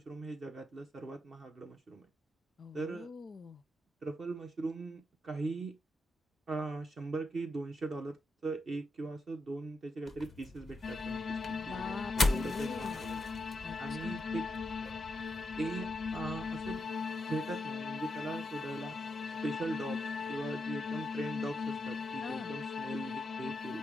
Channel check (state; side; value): normal; both; correlation 0.84